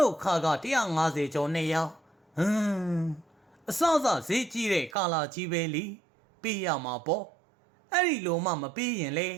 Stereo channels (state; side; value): drops out; left; at 5.0 s